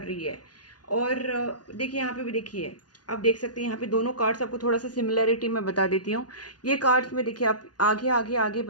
रही है। और देखिए यहाँ पे भी देखिए, आप देख सकते हैं यहाँ पे दोनों कार्ड्स, आपको थोड़ा सा सिमिलरिटी मैं बता देती हूँ। ये कार्ड्स में देखिए, आप आगे आगे आगे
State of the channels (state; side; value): late; right; 0.69 ms